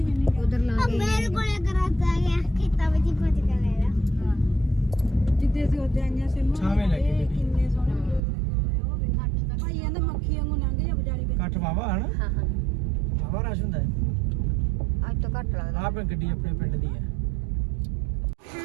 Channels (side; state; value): left; drops out; at 8.2 s